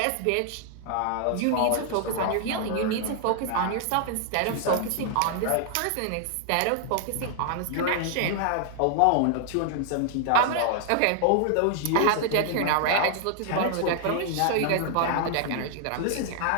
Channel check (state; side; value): different; both; correlation 0.00